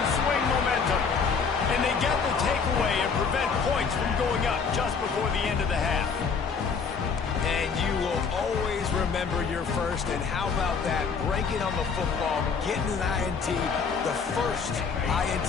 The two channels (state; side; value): quieter; right; 5.6 dB